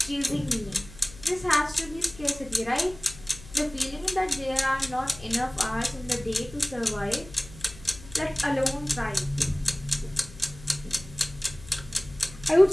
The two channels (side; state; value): left; noise; hum, 17 dB below the sound